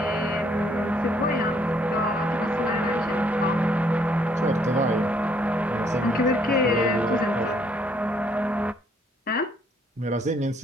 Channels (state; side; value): normal; both; correlation 0.68